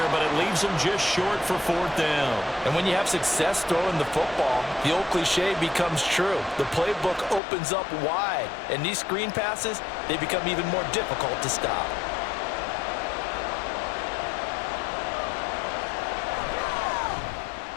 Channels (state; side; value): drops out; right; at 7.4 s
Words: but it leaves them just short for 4th down. And when you have success throwing the football, the old cliche becomes true. The playbook opens up wide, and these screen passes, they become even more difficult to stop.